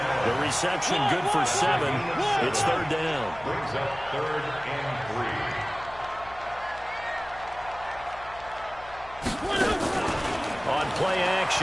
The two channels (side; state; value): left; noise; hum, 19 dB below the sound